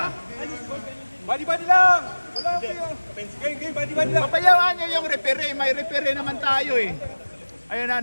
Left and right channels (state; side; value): inverted; both; correlation -1.00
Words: Body lang! Wala kayo. Game, body lang. Papayawaan nyo yung referee. May referee naman tayo eh. Ayun na,